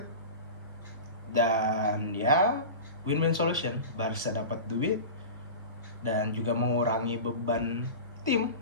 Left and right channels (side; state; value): both; inverted; correlation -0.31